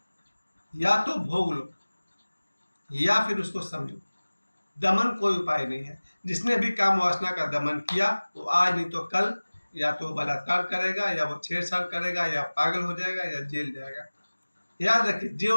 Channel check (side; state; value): both; inverted; correlation -1.00